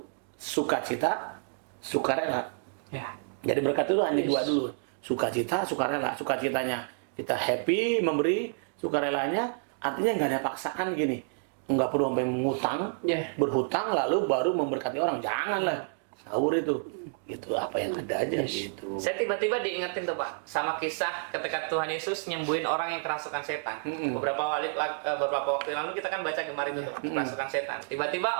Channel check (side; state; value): left; silent; digital silence